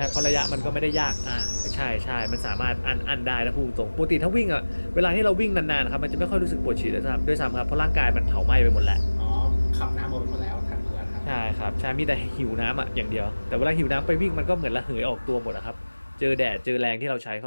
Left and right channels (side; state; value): both; inverted; correlation -1.00